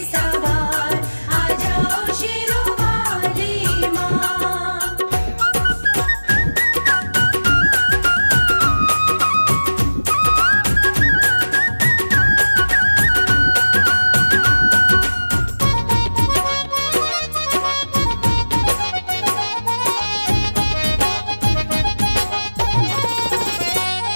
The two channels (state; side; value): inverted; both; correlation -1.00